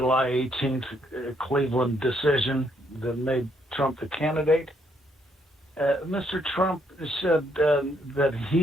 18th Cleveland decision that made Trump the candidate, Mr. Trump said that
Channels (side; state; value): both; normal; correlation 0.72